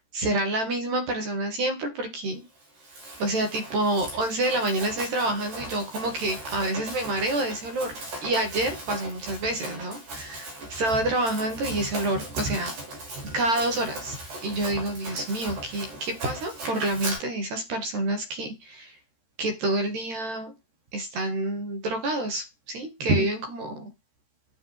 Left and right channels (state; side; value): late; left; 13 ms